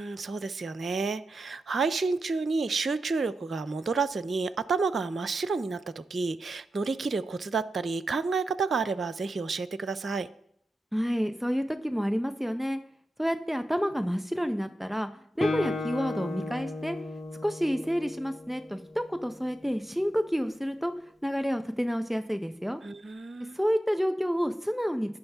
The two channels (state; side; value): normal; both; correlation 0.90